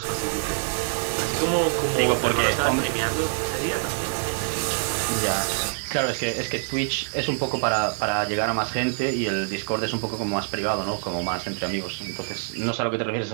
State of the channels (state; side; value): silent; left; digital silence